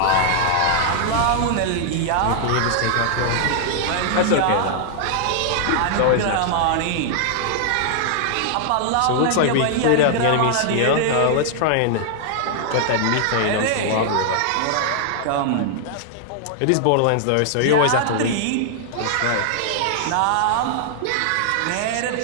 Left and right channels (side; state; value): both; different; correlation -0.01